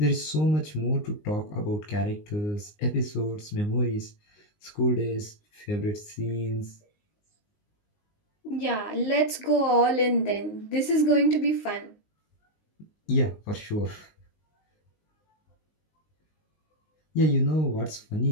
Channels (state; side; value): late; right; 19 ms